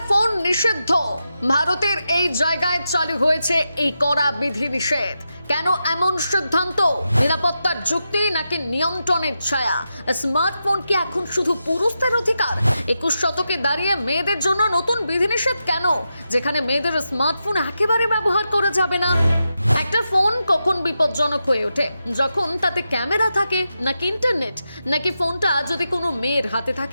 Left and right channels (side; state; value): both; inverted; correlation -0.88